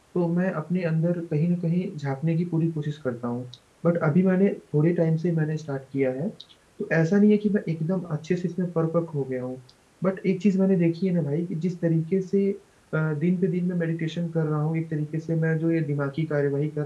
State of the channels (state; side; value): identical; both; correlation 1.00